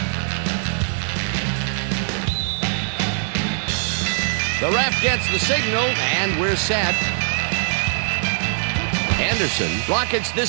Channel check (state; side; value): silent; left; 64 dB below the other